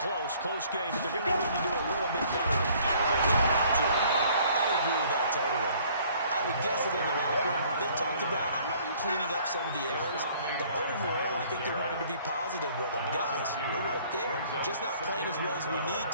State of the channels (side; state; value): both; inverted; correlation -0.57